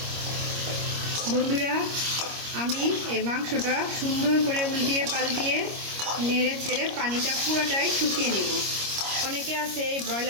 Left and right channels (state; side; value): late; left; 25 ms